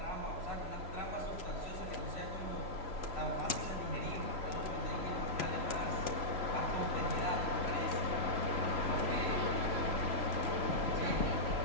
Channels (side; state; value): left; late; 3.0 ms